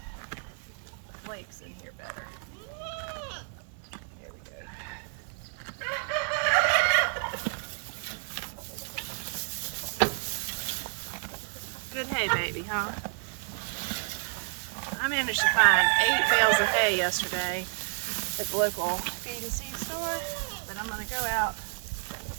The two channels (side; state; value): left; silent; 57 dB below the other